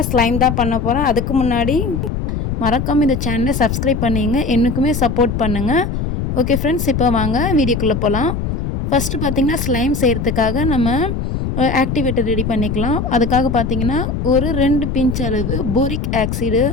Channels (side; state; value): left; noise; rumble, 2 dB below the sound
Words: ஸ்லைம் தான் பண்ண போகிறேன். அதுக்கு முன்னாடி மறக்காமல் இந்த சேனலை சப்ஸ்கிரைப் பண்ணிங்க, எனக்குமே சப்போர்ட் பண்ணுங்கள். ஓகே ஃப்ரெண்ட்ஸ், இப்போ வாங்க வீடியோக்குள்ளே போகலாம். ஃபஸ்ட்டு பார்த்திங்கன்னா ஸ்லைம் செய்கிறதுக்காக நம்ம ஆக்டிவேட்டர் ரெடி பண்ணிக்கலாம். அதுக்காக பார்த்திங்கன்னா ஒரு 2 பிஞ்ச் அளவு போரிக் ஆக்சைடு